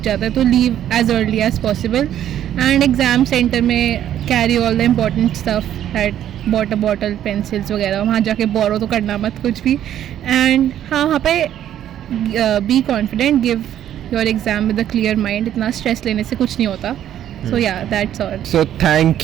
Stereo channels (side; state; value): left; quieter; 11.0 dB